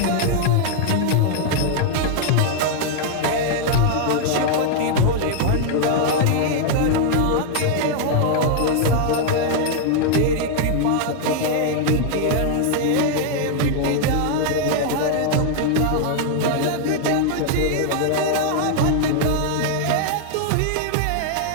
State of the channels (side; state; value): both; different; correlation 0.00